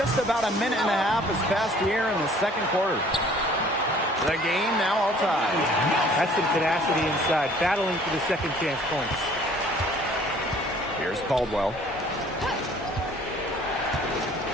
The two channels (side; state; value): both; normal; correlation 0.54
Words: about a minute and a half has passed here in the second quarter. The game now all tied. That's some tenacity inside, battling for the second chance points. Here's Caldwell.